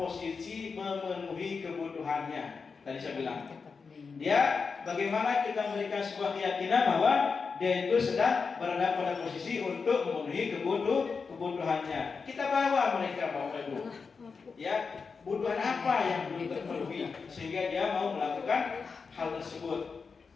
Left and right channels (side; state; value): right; quieter; 5.1 dB